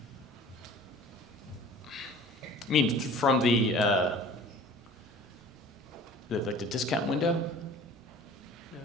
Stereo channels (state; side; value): normal; both; correlation 0.45